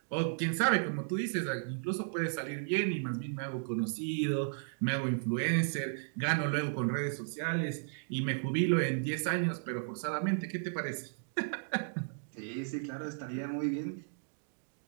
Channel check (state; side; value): silent; left; digital silence